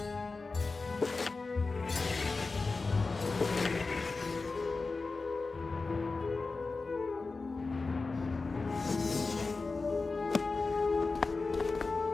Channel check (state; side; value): quieter; right; 3.9 dB